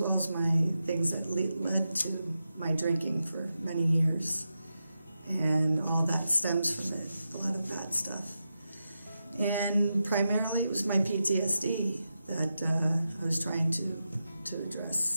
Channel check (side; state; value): both; inverted; correlation -0.89